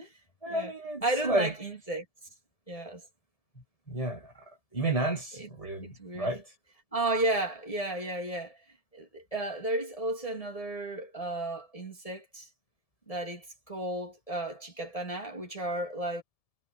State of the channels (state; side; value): late; right; 1.7 ms